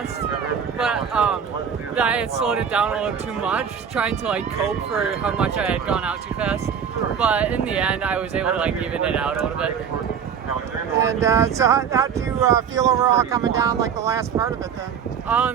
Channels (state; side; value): quieter; left; 7.4 dB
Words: but I had slowed it down a little too much, trying to like cope for how much I had gone out too fast. But in the end, I was able to like even it out a little bit. And so how did you feel overall coming down like the last part of it then?